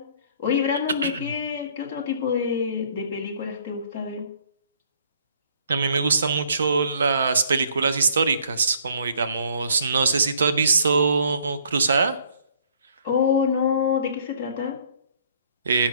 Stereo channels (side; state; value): both; inverted; correlation -0.60